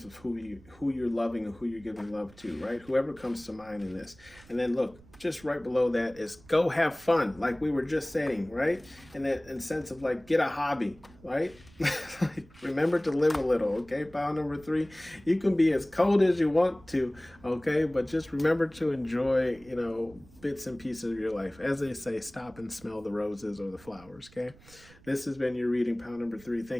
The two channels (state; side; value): noise; right; rumble, 24 dB below the sound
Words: of who you're loving and who you're giving love to, right? Whoever comes to mind in this. And then look, just right below that is go have fun, like we were just saying, right? And that in sense of like get a hobby, right? Like, remember to live a little, okay? Pile number 3, you can be as cold as you want to, okay? But just remember to enjoy, bits and pieces of your life. As they say, stop and smell the roses or the flowers, okay? This has been your reading, pile number 3.